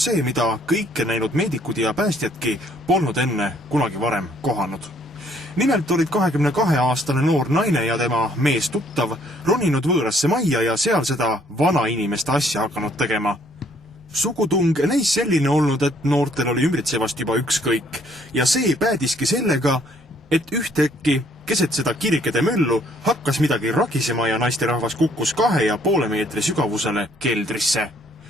see, mida kõike näinud meedikud ja päästjadki polnud enne kunagi varem kohanud. Nimelt olid 22-aastane noor naine ja tema mees tuttav roninud võõrasse majja ja seal seda vanainimeste asja hakanud tegema. Sugutung näis selline olnud, et noortel oli ümbritsevast juba ükskõik ja see päädiski sellega, et ühtäkki keset seda kirikede möllu hakkas midagi ragisema ja naisterahvas kukkus 2,5 meetri sügavusele keldrisse.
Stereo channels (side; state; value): both; normal; correlation 0.64